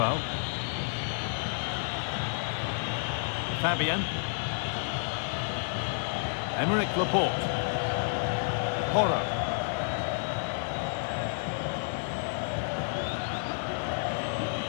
Fabian. Emerick Laporte. Porro.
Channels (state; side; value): silent; right; digital silence